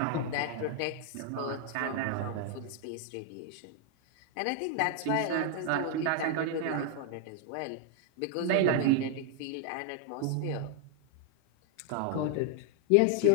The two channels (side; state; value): both; different; correlation 0.00